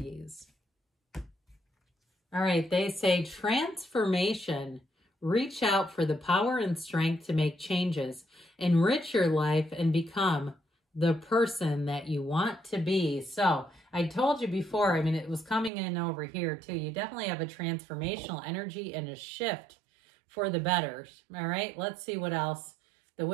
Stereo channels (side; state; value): left; drops out; at 15.7 s